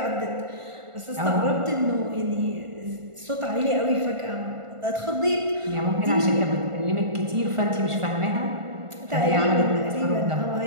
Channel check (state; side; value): late; left; 1.5 ms